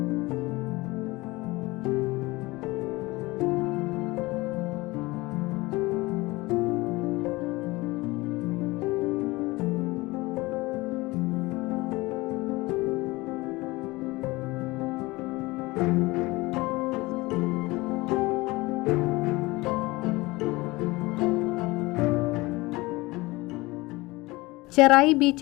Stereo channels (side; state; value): right; quieter; 21.7 dB